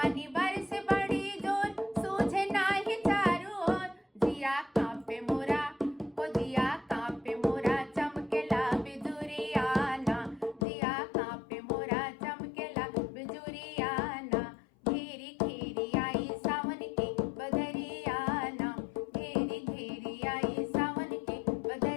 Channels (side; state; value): right; drops out; at 10.7 s